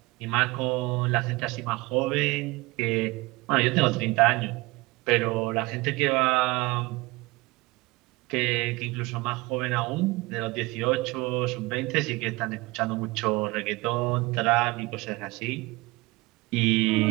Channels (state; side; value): quieter; left; 22.5 dB